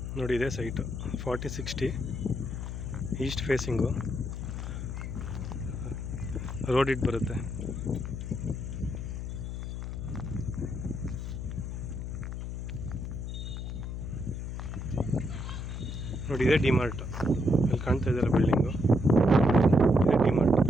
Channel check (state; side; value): noise; left; hum, 5 dB below the sound